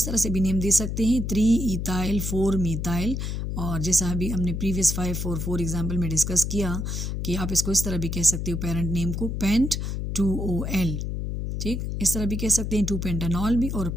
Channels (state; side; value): noise; left; hum, 3 dB below the sound